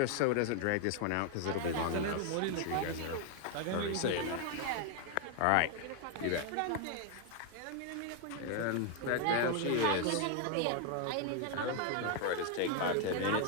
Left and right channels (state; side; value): different; both; correlation 0.00